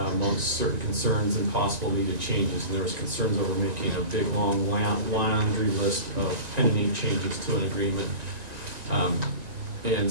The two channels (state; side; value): late; left; 1.9 ms